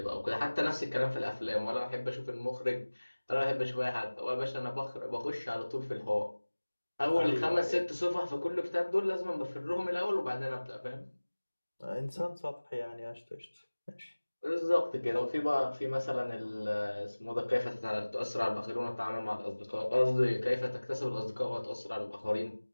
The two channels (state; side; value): inverted; both; correlation -1.00